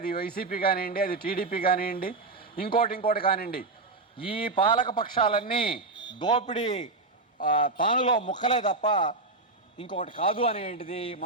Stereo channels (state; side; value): quieter; left; 3.4 dB